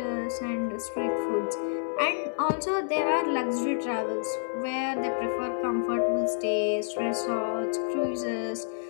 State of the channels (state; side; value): silent; right; 59 dB below the other